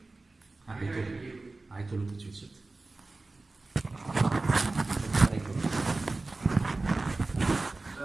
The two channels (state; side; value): quieter; left; 3.3 dB